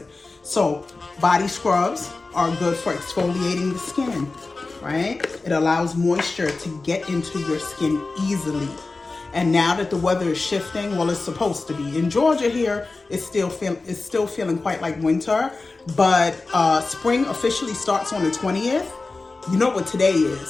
So body scrubs are good for exfoliating the skin, right? It allows moisture to get into your skin easily. And now that the weather is shifting, well, it's supposed to be. In Georgia here, it's still feeling quite like winter, but spring officially starts on the 20th. You know what today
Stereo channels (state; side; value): quieter; right; 3.6 dB